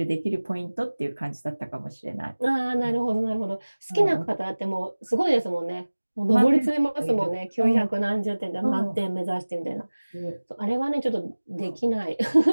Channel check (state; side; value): inverted; both; correlation -1.00